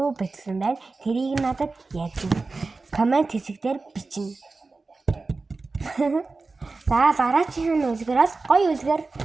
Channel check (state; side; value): quieter; left; 3.8 dB